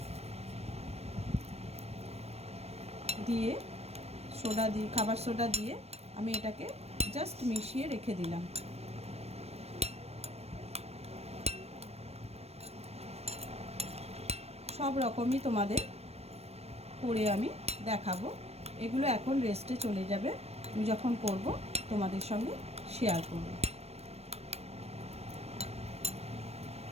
দিয়ে খাবার সোডা দিয়ে আমি এটাকে জাস্ট মিশিয়ে রেখে দিলাম। সব রকমই তোমাদের করে আমি দেখাবো। এগুলো এখন রেস্টে চলে যাবে, আমি যখন করব তোমাদের সঙ্গে শেয়ার করব।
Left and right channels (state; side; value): late; left; 0.30 ms